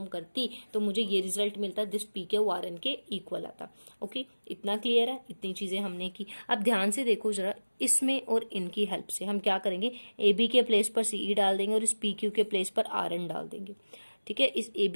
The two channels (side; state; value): both; inverted; correlation -1.00